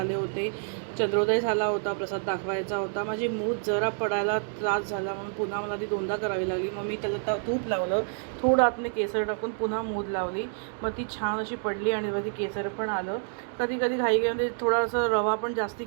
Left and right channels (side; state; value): left; silent; digital silence